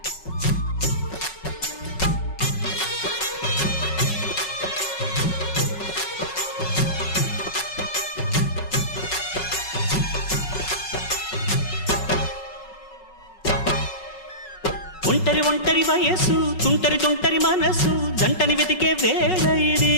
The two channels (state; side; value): late; right; 5.4 ms